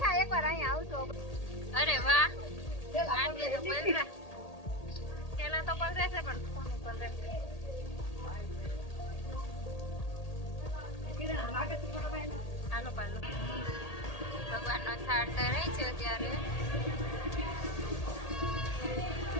એકવાર અહીંયા આવશો. અરે વાહ, આંટી તો પલરા પેલા તો પલરે છે પણ કોનું પલરે છે. હાલો પાલો ભગવાનનો થાળ ધરાય છે અત્યારે.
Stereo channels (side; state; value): right; late; 1.8 ms